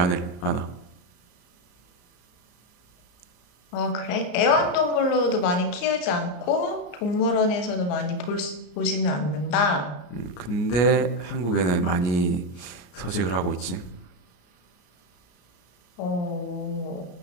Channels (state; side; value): late; right; 34 ms